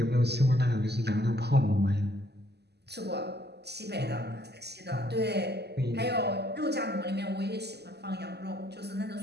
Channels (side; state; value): left; late; 0.49 ms